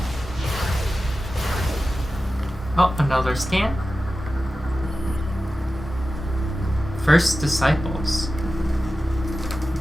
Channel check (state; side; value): normal; both; correlation 0.94